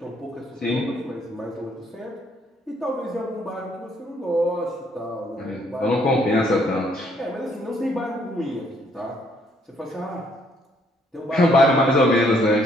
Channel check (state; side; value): normal; both; correlation 0.67